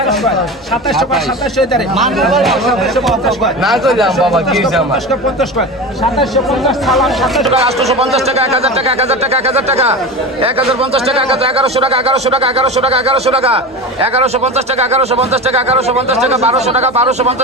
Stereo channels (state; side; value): normal; both; correlation 0.27